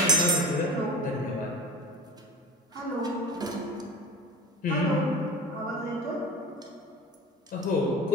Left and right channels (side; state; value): both; normal; correlation 0.32